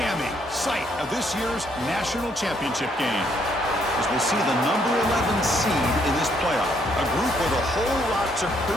site of this year's national championship game. As we'll see the number 11 seed in this playoff, a group with a whole lot to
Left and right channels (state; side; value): normal; both; correlation 0.70